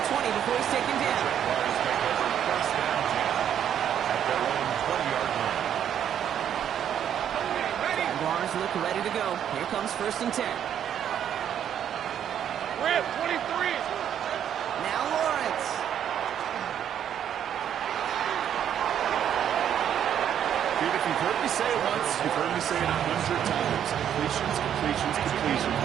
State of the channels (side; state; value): left; quieter; 9.5 dB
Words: 20 before he's taken down. Jaguars take over first down 10 at their own 20-yard line. Jaguars look ready to go. Here comes first and 10. Rip, 23. Now Lawrence. Dude, if you've heard me say it once, you've heard me say it 100 times. Completions, completions, completions.